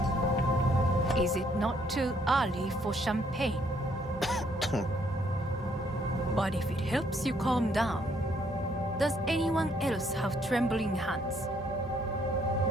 Is it not too early for champagne? But if it helps you calm down, does anyone else have trembling hands?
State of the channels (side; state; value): both; normal; correlation 0.68